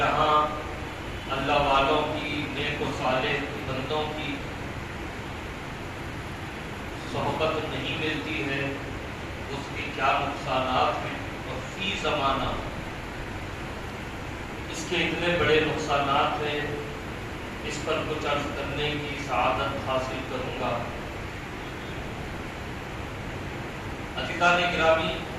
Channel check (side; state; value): both; identical; correlation 1.00